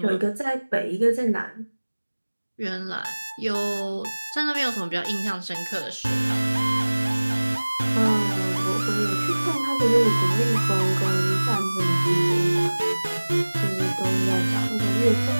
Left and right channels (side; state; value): both; inverted; correlation -1.00